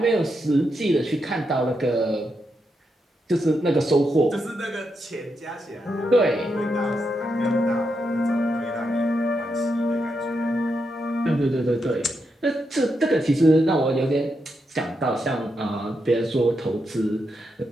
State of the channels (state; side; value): normal; both; correlation 0.83